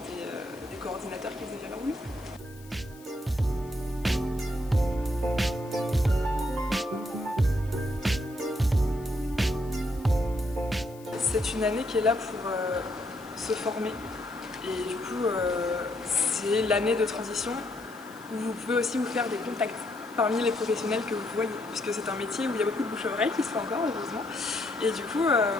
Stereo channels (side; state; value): left; noise; hiss, 23 dB below the sound